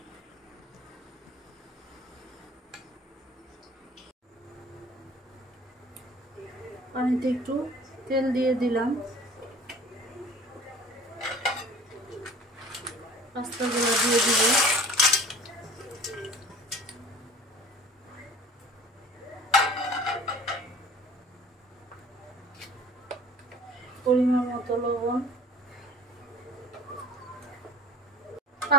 পানিতে একটু তেল দিয়ে দিলাম, পাস্তাগুলো দিয়ে দিব। পরিমাণ মতো লবণ।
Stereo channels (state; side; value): normal; both; correlation 0.46